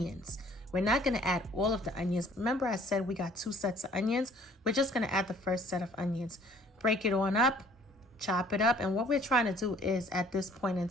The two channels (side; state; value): both; normal; correlation 0.56